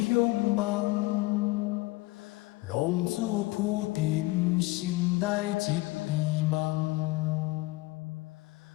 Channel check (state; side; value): quieter; right; 20.9 dB